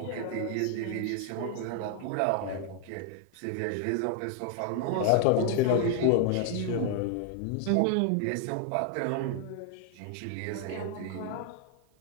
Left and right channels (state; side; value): different; both; correlation 0.00